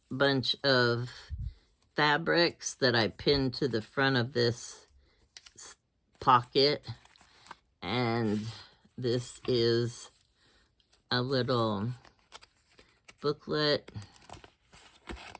bunch of fabrics that I pinned to the front of this pocket. And this is a little booklet.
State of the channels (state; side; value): identical; both; correlation 1.00